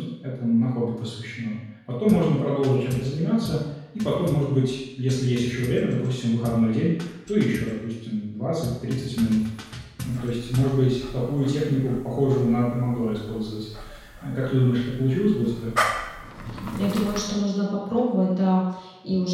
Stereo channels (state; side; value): identical; both; correlation 1.00